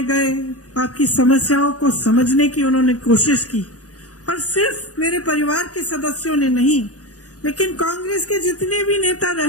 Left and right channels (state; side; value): late; right; 0.67 ms